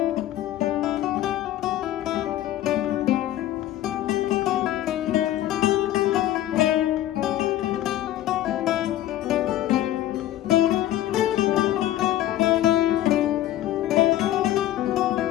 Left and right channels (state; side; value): quieter; right; 13.5 dB